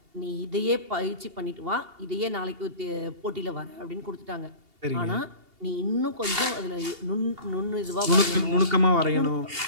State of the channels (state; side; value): late; left; 2.8 ms